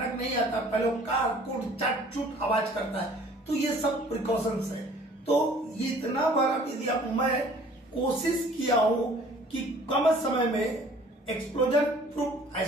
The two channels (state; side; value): normal; both; correlation 0.52